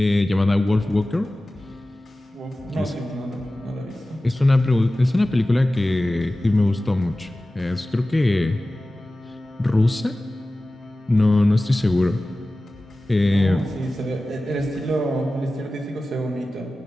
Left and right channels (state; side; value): normal; both; correlation 0.96